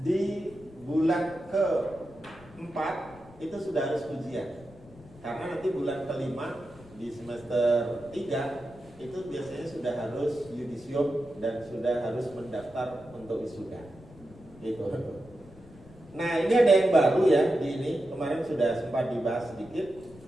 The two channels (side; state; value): left; noise; rumble, 21 dB below the sound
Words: Di bulan ke-4 itu sudah harus ujian. Karena nanti bulan ke-5 di semester 3 itu biasanya sudah harus yudisium dan sudah harus mendaftar untuk wisuda. Gitu. Nah ini ada yang baru ya di ini, kemarin sudah sempat dibahas sedikit.